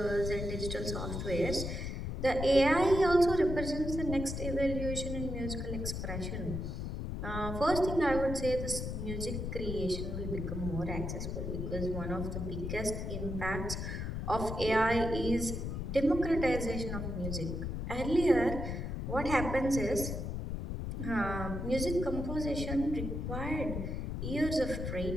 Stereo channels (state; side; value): noise; left; rumble, 4 dB below the sound